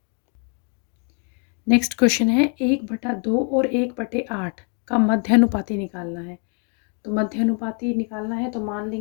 नेक्स्ट क्वेश्चन है 1/2 और 1/8 का मध्यानुपाती निकालना है। तो मध्यानुपाती निकालना है तो मान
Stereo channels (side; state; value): right; quieter; 39.2 dB